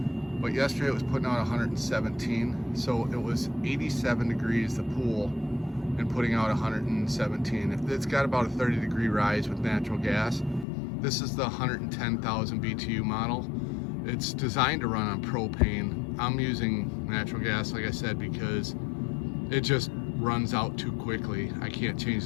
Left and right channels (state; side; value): drops out; right; at 10.7 s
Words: But yesterday it was putting out 117, so it was 87 degrees the pool and putting out 117. It's got about a 30-degree rise with natural gas. This is the 110,000 BTU model. It's designed to run on propane. I'm using natural gas, like I said, because it just runs out too quickly. I can't change